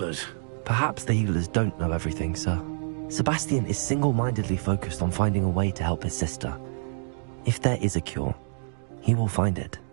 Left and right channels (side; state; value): left; silent; digital silence